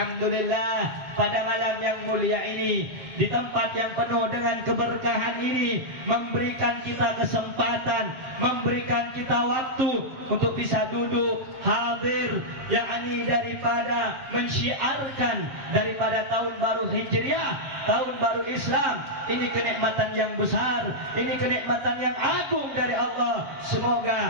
pada malam yang mulia ini, di tempat yang penuh dengan keberkahan ini, memberikan kita kesempatan, memberikan kita waktu untuk bisa duduk hadir, yakni daripada mensyiarkan daripada tahun baru Hijriah, tahun baru Islam. Ini kenikmatan yang besar, ini kenikmatan yang agung dari Allah.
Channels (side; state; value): left; late; 7.6 ms